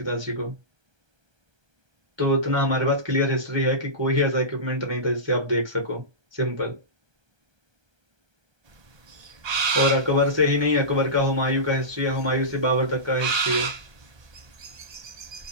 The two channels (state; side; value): late; left; 1.2 ms